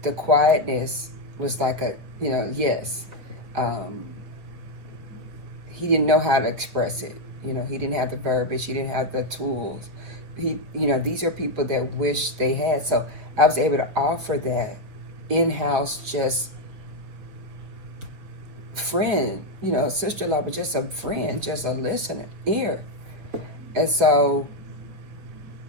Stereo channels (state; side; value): late; left; 5.5 ms